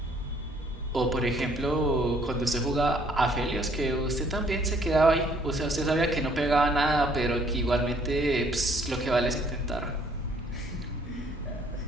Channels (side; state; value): both; normal; correlation 0.62